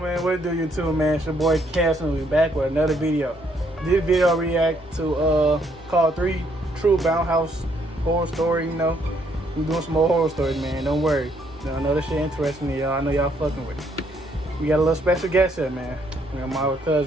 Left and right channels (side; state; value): both; normal; correlation 0.70